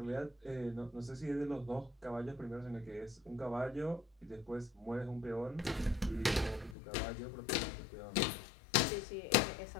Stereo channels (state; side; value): drops out; right; at 6.8 s